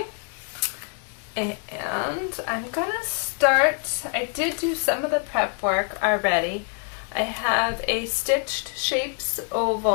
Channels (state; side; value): quieter; right; 39.7 dB